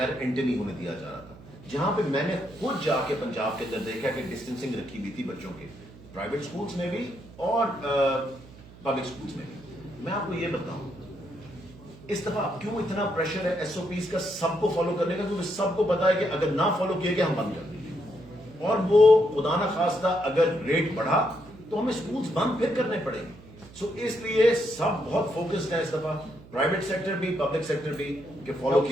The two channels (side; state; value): right; noise; hum, 20 dB below the sound